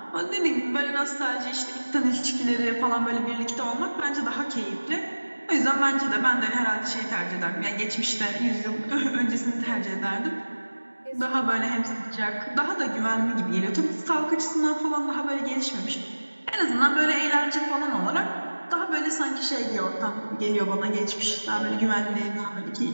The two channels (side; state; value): both; inverted; correlation -1.00